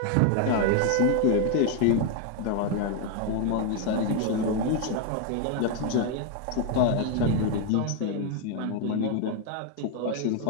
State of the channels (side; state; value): both; different; correlation 0.01